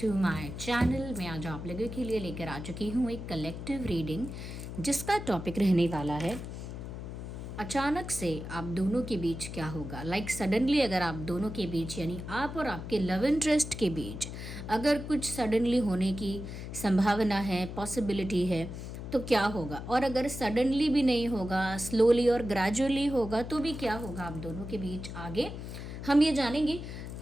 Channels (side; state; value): left; noise; hum, 8 dB below the sound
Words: my channel. मैं आज आप लोगों के लिए लेकर आ चुकी हूँ एक कलेक्टिव रीडिंग जिसका टॉपिक रहने वाला है अचानक से आप दोनों के बीच क्या होगा। सडनली अगर आप दोनों के बीच यानी आप और आपके लव इंटरेस्ट के बीच अगर कुछ सडनली होने की संभावना है, पॉसिबिलिटी है, तो क्या होगा। और अगर सडनली भी नहीं होगा, स्लोली और ग्रेजुअली होगा, तो भी क्या होगा आप दोनों के बीच आगे, हम ये जानेंगे।